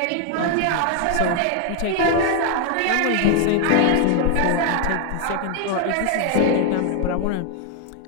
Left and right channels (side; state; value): both; different; correlation 0.00